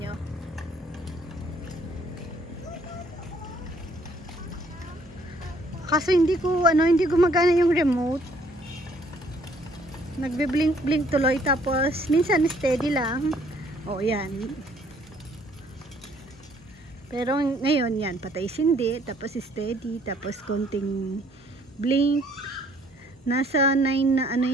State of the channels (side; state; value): both; normal; correlation 0.62